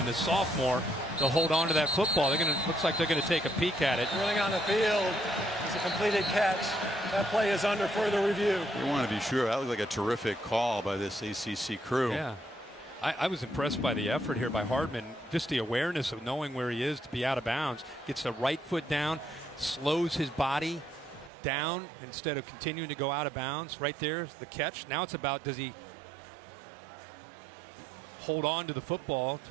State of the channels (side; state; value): left; drops out; at 21.3 s